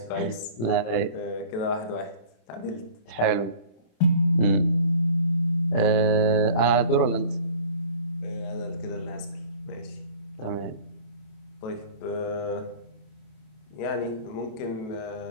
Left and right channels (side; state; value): right; late; 26 ms